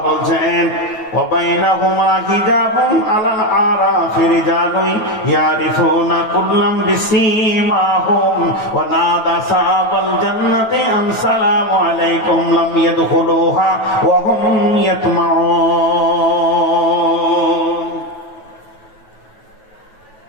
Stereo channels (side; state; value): right; late; 9.3 ms